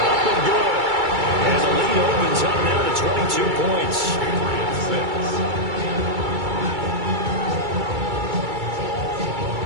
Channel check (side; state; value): left; late; 2.3 ms